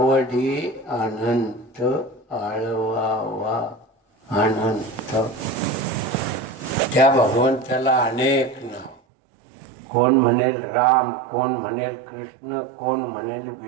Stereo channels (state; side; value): drops out; left; at 9.0 s